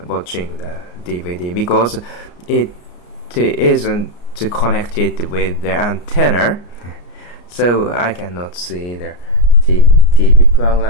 watching the DVD, because it isn't connected with the antenna, so I cannot see the TV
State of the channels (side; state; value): right; late; 34 ms